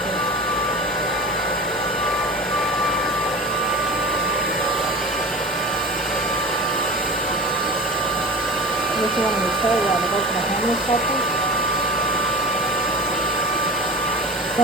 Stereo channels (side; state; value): both; normal; correlation 0.33